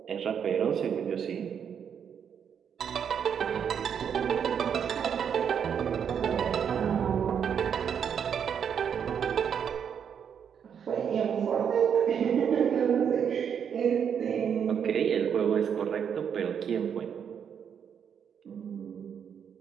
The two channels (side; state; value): left; quieter; 7.8 dB